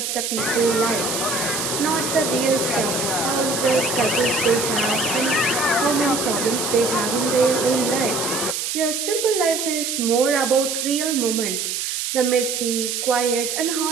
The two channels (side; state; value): right; noise; hiss, 2 dB below the sound